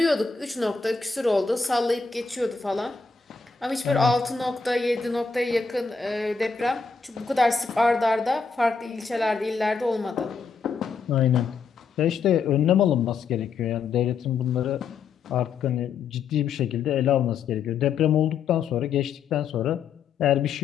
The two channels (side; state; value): right; quieter; 5.3 dB